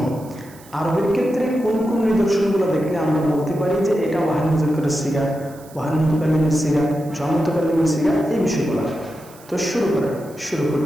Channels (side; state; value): right; noise; hiss, 24 dB below the sound